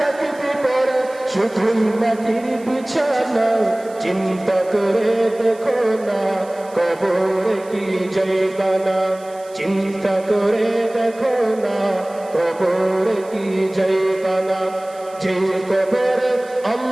পড়ে শুধুই মাটির বিছানা। চিন্তা করে দেখো না কবরে কি যাইবা না, চিন্তা করে দেখো না কবরে কি যাইবা না। যে কবরে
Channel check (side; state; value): right; noise; hiss, 24 dB below the sound